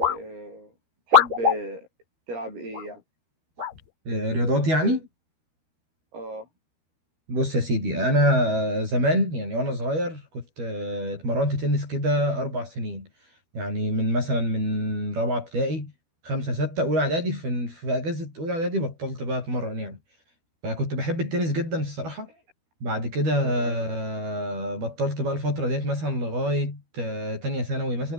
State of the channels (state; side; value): late; left; 13 ms